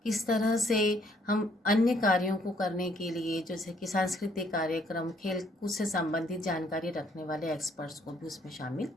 किस तरह से हम अन्य कार्यों को करने के लिए जैसे कि सांस्कृतिक कार्यक्रम, खेल कूद से संबंधित जानकारी रखने वाले एक्सपर्ट्स को भी उसमें शामिल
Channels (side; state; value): both; normal; correlation 0.66